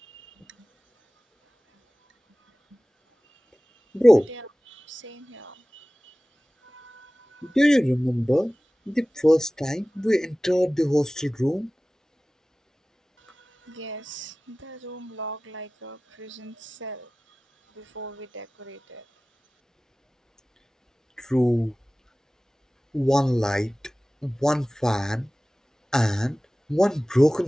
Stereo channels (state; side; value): normal; both; correlation 0.97